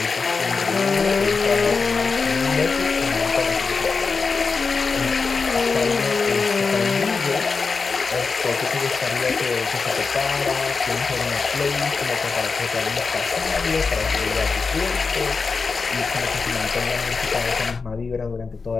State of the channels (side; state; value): right; quieter; 4.7 dB